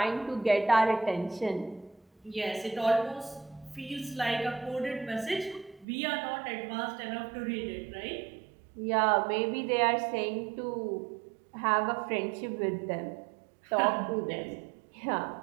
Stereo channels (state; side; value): drops out; left; at 5.9 s